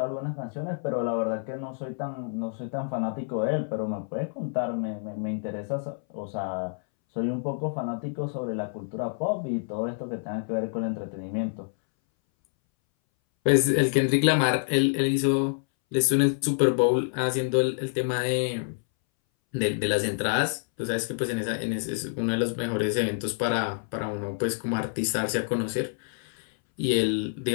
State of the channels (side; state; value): right; silent; 60 dB below the other